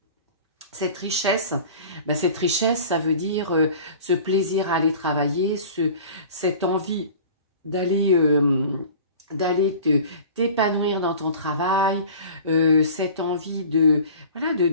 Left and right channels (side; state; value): both; inverted; correlation -0.42